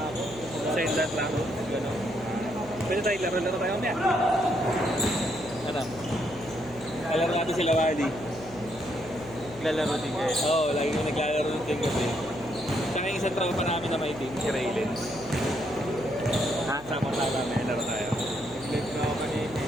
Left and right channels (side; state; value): left; noise; hum, 20 dB below the sound